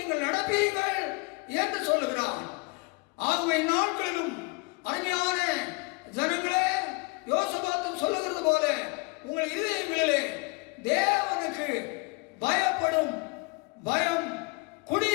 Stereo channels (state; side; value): quieter; right; 28.9 dB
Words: நடப்பீர்கள் என்று சொல்லுகிறான். ஆகவே நாட்களிலும் அருமையான ஜனங்களே, யோசபாத் சொல்லுகிறது போல உங்கள் இதயங்களிலே தேவனுக்கு பயப்படும் பயம்